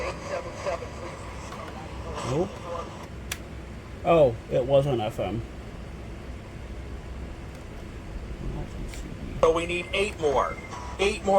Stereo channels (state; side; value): identical; both; correlation 1.00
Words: Nope. Oh, it was on FM. So we need 8 more. 8